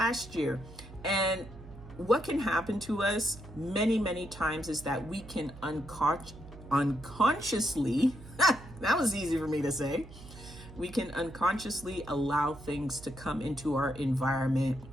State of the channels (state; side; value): noise; right; hum, 17 dB below the sound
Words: year. And what can happen to us many, many times is that we can unconsciously, that was easy for me to say, we can unconsciously allow things to come into our environment